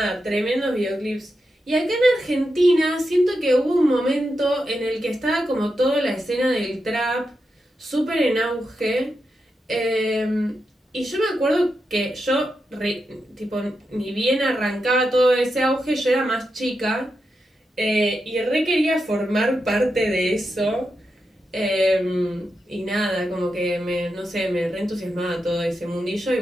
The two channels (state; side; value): normal; both; correlation 0.87